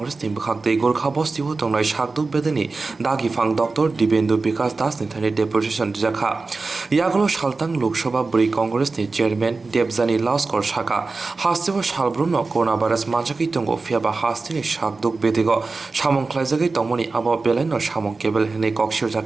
Team Khakde Gorkha Bostiwo Tongnai Shakduk Bedani Dagi Fang Dr. Dibendu Bikas Das Nithani Depution Jakha Yaglo Shaltang Lok Sabha Bwrwi Congress ni Chairman Debjani Laskor Shaka Hastewo Shalbruno Coronavirus Manjaki Tongo Fiaba Hasteni Shakduk Bedigo Shamong Khlaijagi Tongmoni Abo Beleno Shamong Kebel Hene Kokshir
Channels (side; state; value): left; quieter; 3.9 dB